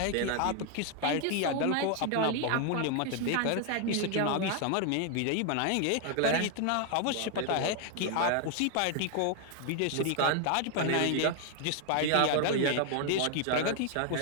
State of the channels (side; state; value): both; different; correlation 0.00